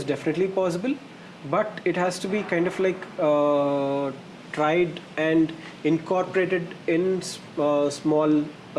definitely possible, but it has to be kind of like tried and incorporated in small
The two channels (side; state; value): both; identical; correlation 1.00